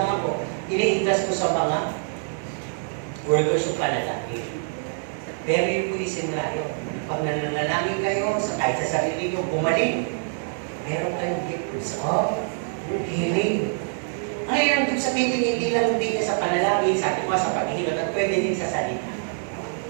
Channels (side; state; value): left; silent; digital silence